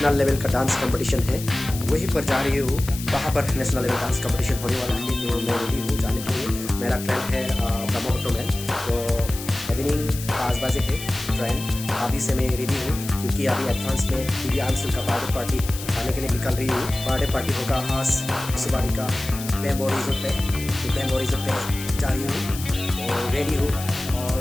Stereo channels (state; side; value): noise; left; hiss, 11 dB below the sound